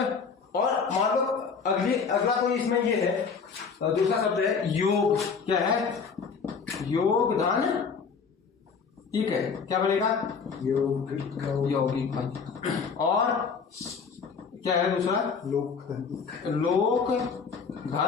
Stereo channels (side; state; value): right; quieter; 5.6 dB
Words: और मान लो अगला कोई इसमें ये है, दूसरा शब्द है योग। क्या है? योग धन इक है, क्या बनेगा? यौगिक यौगिक बन। और क्या है दूसरा? लोक लोक